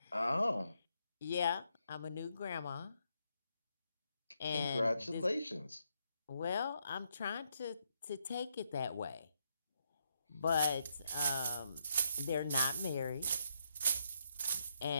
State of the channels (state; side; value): inverted; both; correlation -0.78